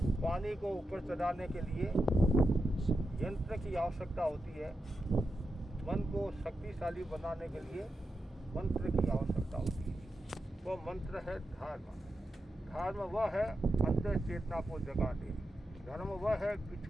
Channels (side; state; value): both; normal; correlation 0.88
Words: पानी को ऊपर चढ़ाने के लिए यंत्र की आवश्यकता होती है। मन को शक्तिशाली बनाने के लिए मंत्र की आवश्यकता होती है। वो मंत्र है धर्म। धर्म वह है अंतर चेतना को जगा दे। धर्म वह है